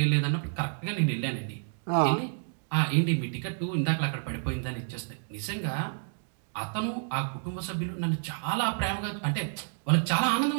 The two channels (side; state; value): left; silent; digital silence